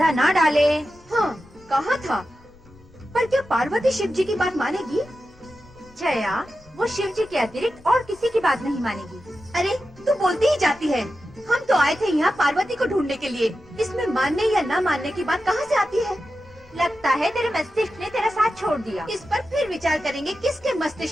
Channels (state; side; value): noise; left; rumble, 26 dB below the sound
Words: ना डाले। हाँ, कहा था। पर क्या पार्वती शिव जी की बात मानेगी? जया, वो शिव जी के अतिरिक्त और किसी की बात नहीं मानेगी। अरे, तू बोलती ही जाती है। हम तो आए थे यहाँ पार्वती को ढूंढने के लिए। इसमें मानने या न मानने की बात कहाँ से आती है? लगता है तेरे मस्तिष्क ने तेरा साथ छोड़ दिया। इस पर फिर विचार करेंगे किसके